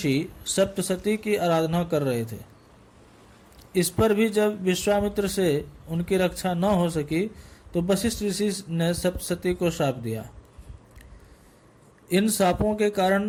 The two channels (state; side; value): identical; both; correlation 1.00